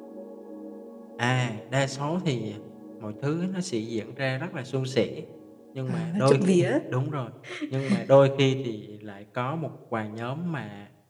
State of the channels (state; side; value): identical; both; correlation 1.00